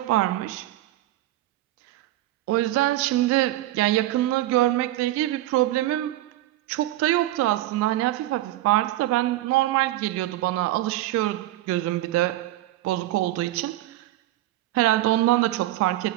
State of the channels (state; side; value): quieter; left; 15.7 dB